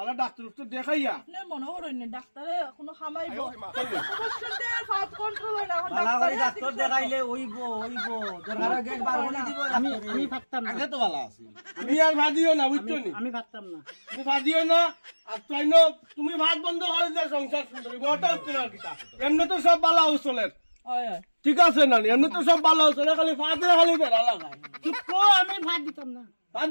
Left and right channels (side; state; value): both; inverted; correlation -1.00